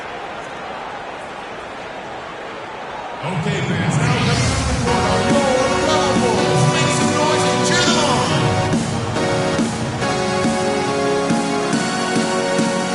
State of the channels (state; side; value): identical; both; correlation 1.00